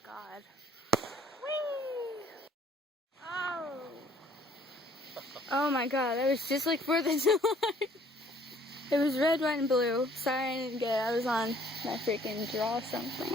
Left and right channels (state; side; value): normal; both; correlation 0.59